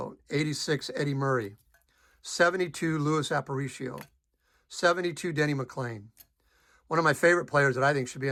86 Eddie Murray, 72 Luis Aparicio, 72 Denny McClain. One of my favorite players that I think should be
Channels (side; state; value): both; identical; correlation 1.00